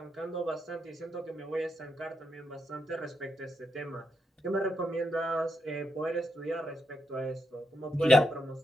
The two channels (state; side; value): normal; both; correlation 0.81